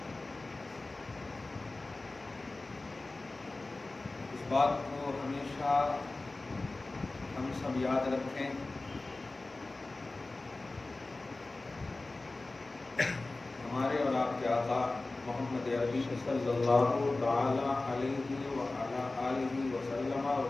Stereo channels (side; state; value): right; quieter; 3.2 dB